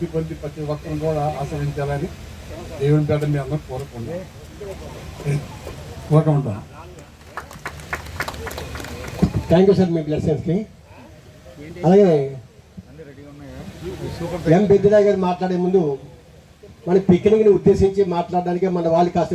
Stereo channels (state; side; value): identical; both; correlation 1.00